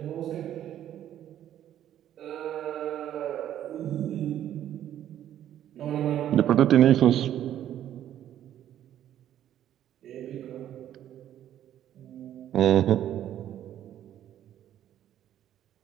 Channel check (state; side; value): quieter; left; 11.3 dB